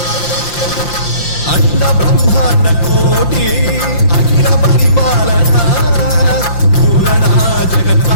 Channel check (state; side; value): late; right; 5.8 ms